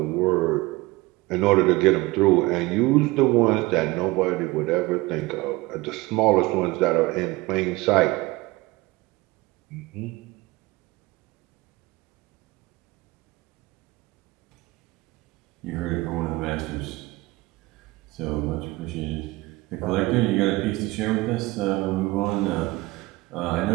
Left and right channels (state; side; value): quieter; left; 21.2 dB